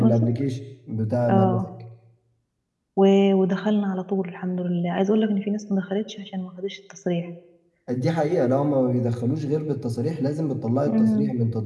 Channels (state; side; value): identical; both; correlation 1.00